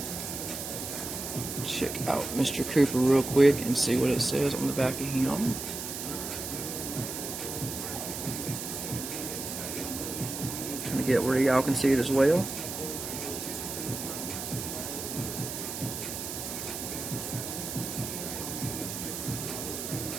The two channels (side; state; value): right; noise; hiss, 6 dB below the sound